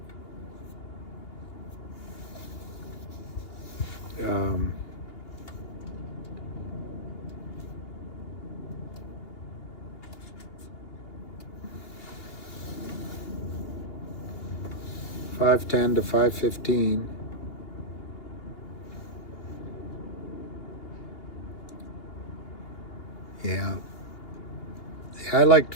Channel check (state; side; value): late; right; 2.8 ms